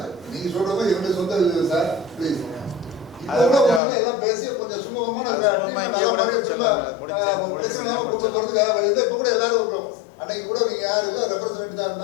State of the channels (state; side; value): drops out; right; at 3.8 s